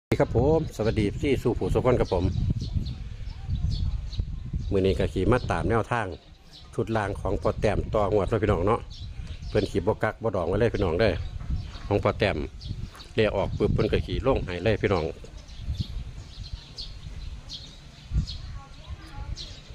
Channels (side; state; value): both; identical; correlation 1.00